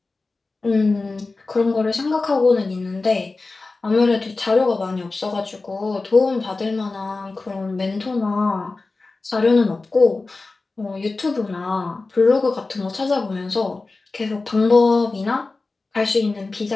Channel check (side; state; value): right; quieter; 3.6 dB